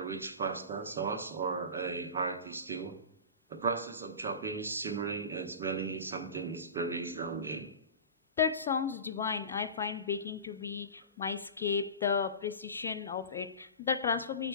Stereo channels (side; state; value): both; inverted; correlation -0.32